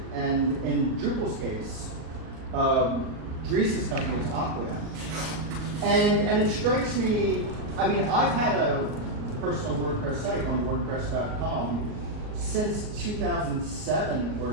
and in Drupal's case, Dries' company is Aquia, and it strikes me. I've had a personal WordPress site on WordPress.com since 2007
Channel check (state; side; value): late; left; 38 ms